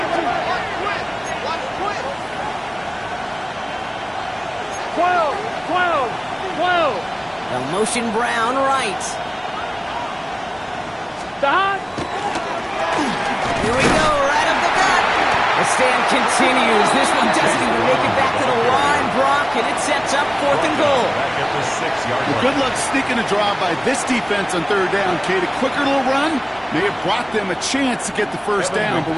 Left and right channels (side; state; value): both; identical; correlation 1.00